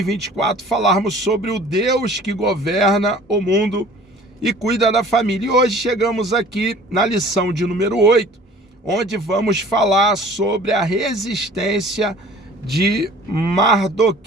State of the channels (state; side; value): normal; both; correlation 0.49